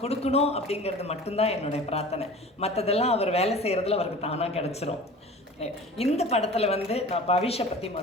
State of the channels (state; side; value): normal; both; correlation 0.40